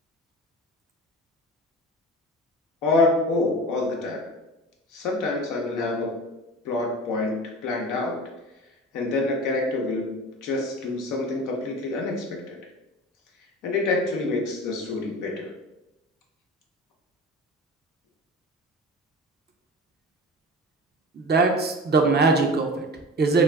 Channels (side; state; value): both; normal; correlation 0.35